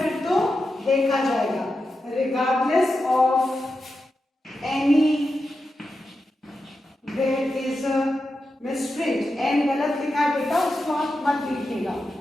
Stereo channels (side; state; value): both; normal; correlation 0.89